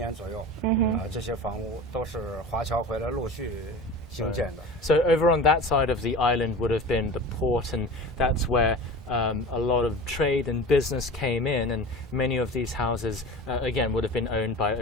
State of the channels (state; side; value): normal; both; correlation 0.35